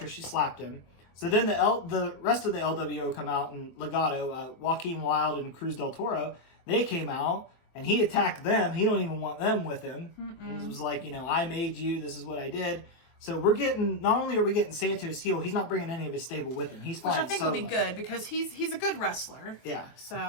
she slapped him. So then the rest of the LWO come out, and Legado, Joaquin Wilde and Cruz del Toro, they came out, and he attacked them. He don't even want them with him. It was like, I made you, this is what I did. So not only are we getting Santos heel, he's not bringing any of his stable with him. Which I think will be good, because he's a good wrestler. Yeah. So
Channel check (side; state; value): right; late; 23 ms